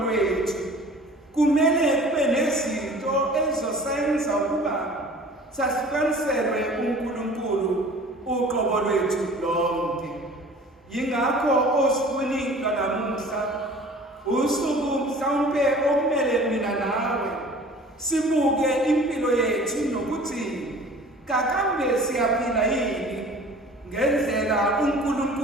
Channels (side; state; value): both; normal; correlation 0.46